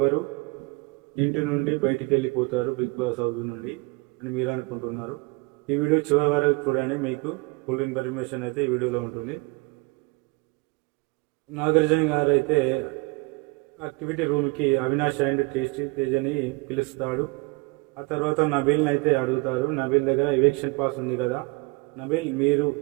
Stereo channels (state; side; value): quieter; left; 26.7 dB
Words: ఇంటి నుండి బయటికి వెళ్ళిపోతారు బిగ్ బాస్ హౌస్ నుండి అని మీరు అనుకుంటున్నారు. ఈ వీడియో చివరి వరకు చూడండి, మీకు ఫుల్ ఇన్ఫర్మేషన్ అయితే ఈ వీడియోలో ఉంటుంది. నాగార్జున గారు అయితే యాక్టివిటీ రూమ్కి అవినాష్ అండ్ టేస్టీ తేజ్ అని పిలుస్తాడు. ఆ తర్వాత నబీల్ని అయితే అడుగుతారు. నబీల్ దగ్గర ఎవిక్షన్ పాస్ ఉంది కదా, నబీల్ మీరు